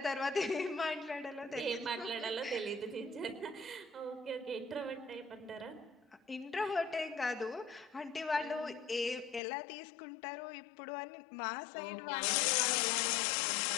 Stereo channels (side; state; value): right; drops out; at 9.4 s